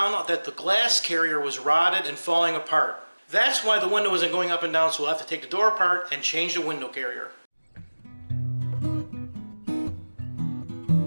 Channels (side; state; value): both; inverted; correlation -1.00